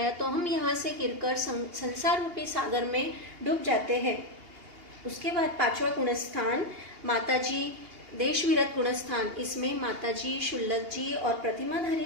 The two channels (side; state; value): left; late; 2.8 ms